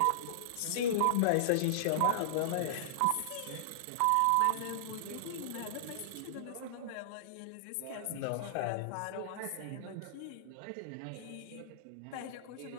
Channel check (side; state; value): both; different; correlation -0.02